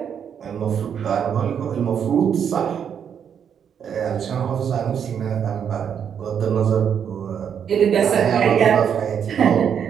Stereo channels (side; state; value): left; quieter; 8.0 dB